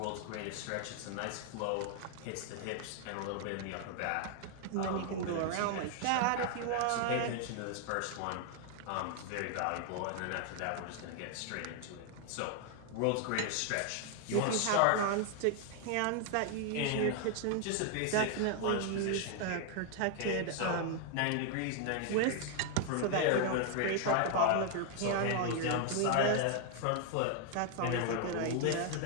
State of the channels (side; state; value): both; different; correlation 0.00